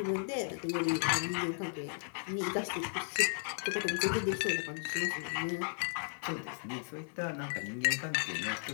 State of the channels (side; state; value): right; silent; digital silence